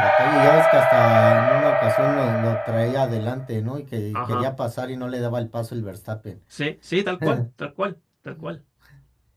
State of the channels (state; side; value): identical; both; correlation 1.00